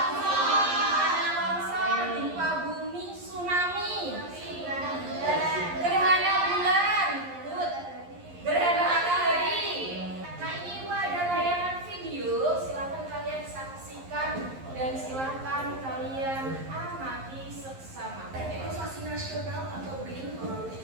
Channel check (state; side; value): late; left; 11 ms